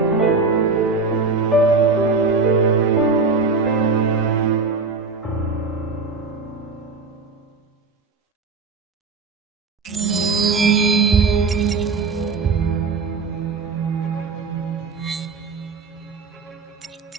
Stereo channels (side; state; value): left; quieter; 4.3 dB